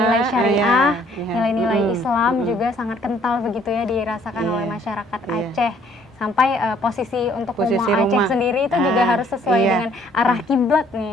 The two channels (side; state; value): both; normal; correlation 0.61